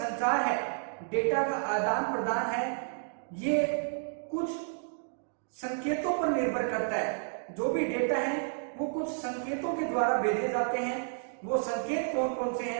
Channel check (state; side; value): silent; left; digital silence